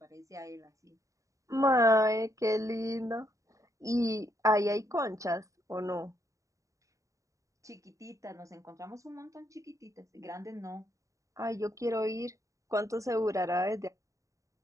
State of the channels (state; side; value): late; left; 0.16 ms